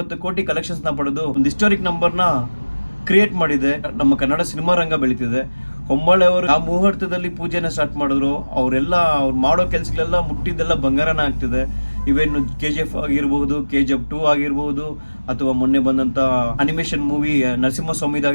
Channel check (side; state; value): both; inverted; correlation -1.00